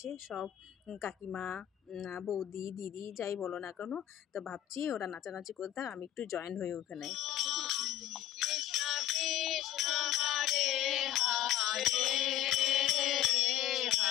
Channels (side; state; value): right; quieter; 12.3 dB